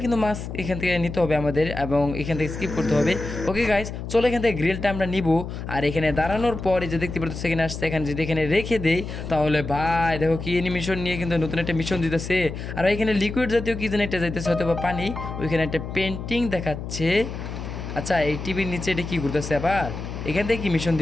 কিন্তু মাস্ক এখান থেকে নিতে হবে আমাদের, এবং এখান থেকে স্কিপ করতে হবে। ওকে গাইস চলো এখান থেকে গ্রিলটা আমরা নিব। আর এখানে দাঁড়ানোর পরে যে দেখতে পাচ্ছ এখানে আসছে, এখানে যদি এখানে রেখে দেই তাহলে ভাই দেখো কি মিশন নিয়ে কিন্তু নতুন একটা মিশন দিতেছে। আর এখানে লিকুইড জাতীয় কি যেন একটা যাইতেছে, হয়তো বা পানি। ওইখানে একটা পেন্টিং দেখাচ্ছে। আচ্ছা এই টিভির নিচে এটা কি ঘুরতেছে আবার, এখান থেকে কি মিশন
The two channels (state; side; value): noise; left; hum, 7 dB below the sound